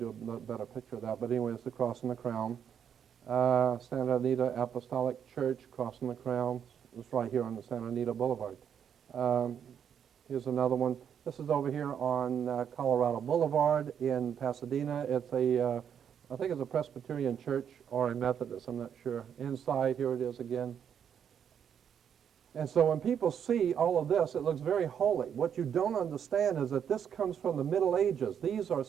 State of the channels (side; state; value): left; quieter; 8.3 dB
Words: a better picture of that. But anyway, it's the cross and the crown. Santa Anita Apostolic Church, cross and the crown. It's right here on the Santa Anita Boulevard. Here's another one. This is over here on Colorado Boulevard in Pasadena. It's I think it's a Presbyterian church or a Methodist, I'm not sure. Inside, here it is again. And so when people see all of this, it looks very holy. What you don't understand is that this comes from the Middle Ages. These are